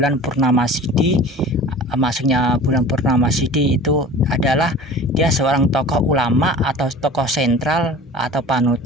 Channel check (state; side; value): normal; both; correlation 0.40